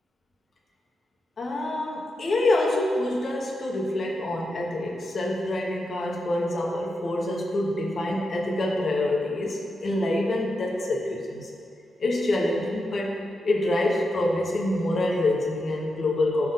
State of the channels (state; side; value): normal; both; correlation 0.87